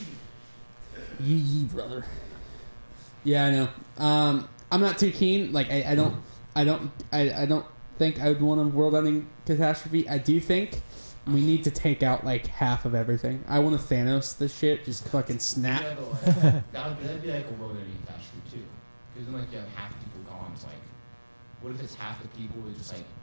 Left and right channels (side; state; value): both; inverted; correlation -1.00